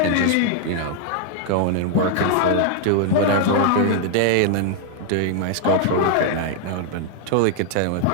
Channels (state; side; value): different; both; correlation 0.00